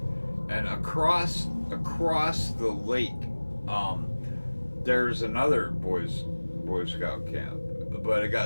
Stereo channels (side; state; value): both; inverted; correlation -1.00